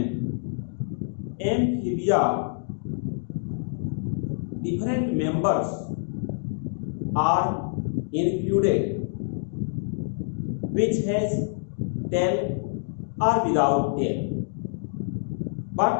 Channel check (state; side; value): silent; right; digital silence